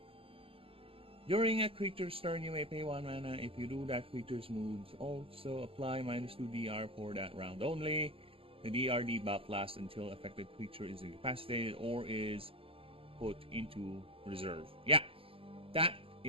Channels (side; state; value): left; late; 0.26 ms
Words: During a creature's turn, you may pay 1 mana. If you do, that creature's moves also apply -2 DR for that round only. The DR debuff lasts until affected creature is incapacitated or is put into reserve. Yeah, that